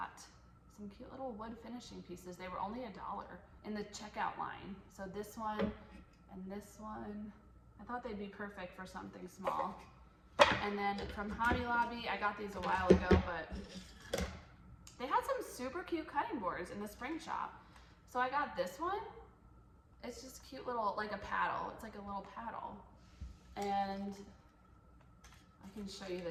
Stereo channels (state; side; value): identical; both; correlation 1.00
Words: some cute little wood finishing pieces. They were only $1 in the checkout line. So this one and this one, I thought they'd be perfect for something small. And then from Hobby Lobby, I got these a while ago, but they had some super cute cutting boards in the spring shop. So I got this one. It's just cute little, like a paddle. It's like a little paddle. And I can show you